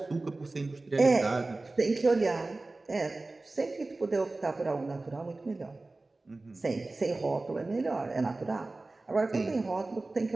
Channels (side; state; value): left; quieter; 3.2 dB